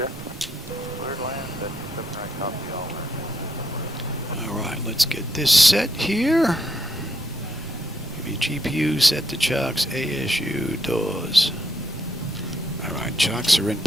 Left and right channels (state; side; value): normal; both; correlation 0.76